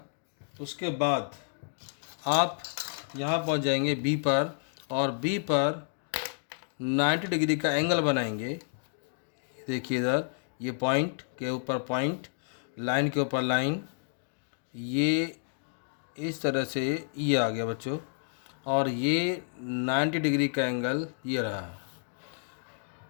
उसके बाद आप यहाँ पहुँच जाएंगे बी पर, और बी पर 90 डिग्री का एंगल बनाएंगे। देखिए इधर ये पॉइंट के ऊपर पॉइंट, लाइन के ऊपर लाइन, ये इस तरह से ये आ गया बच्चों, और ये 90 डिग्री का एंगल ये रहा।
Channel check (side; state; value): right; silent; digital silence